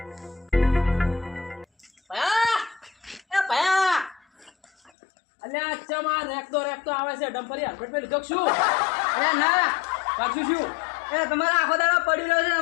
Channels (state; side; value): drops out; right; at 4.9 s